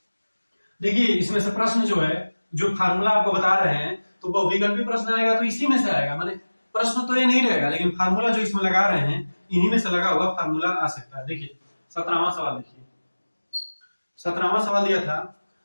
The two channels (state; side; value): inverted; both; correlation -1.00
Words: देखिए इसमें से प्रश्न जो है, जो फार्मूला आपको बता रहे हैं, तो बहुविकल्पी प्रश्न आएगा तो इसी में से आएगा। माने प्रश्न तो ये नहीं रहेगा, लेकिन फार्मूला जो इसमें लगा रहे हैं, इन्हीं में से लगा हुआ फार्मूला आ सकता है। देखिए 17वां सवाल देखिए, 17वां सवाल दिया था